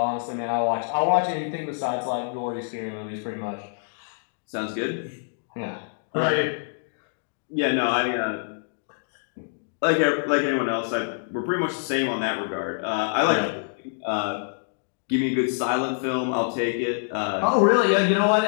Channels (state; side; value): silent; right; digital silence